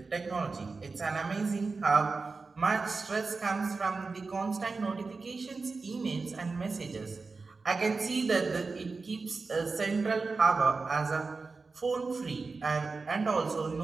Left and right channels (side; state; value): left; quieter; 4.2 dB